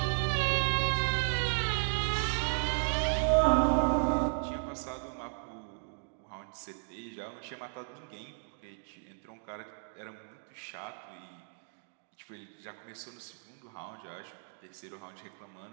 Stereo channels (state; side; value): silent; left; digital silence